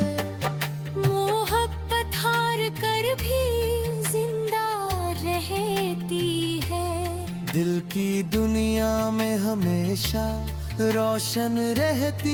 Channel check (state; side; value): identical; both; correlation 1.00